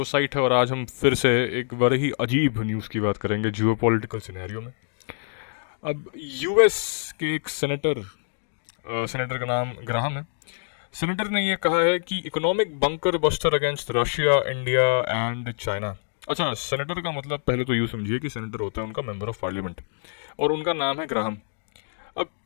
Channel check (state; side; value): silent; right; digital silence